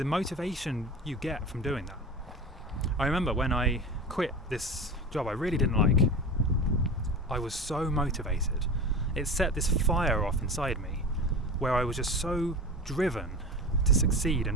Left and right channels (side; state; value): both; normal; correlation 0.30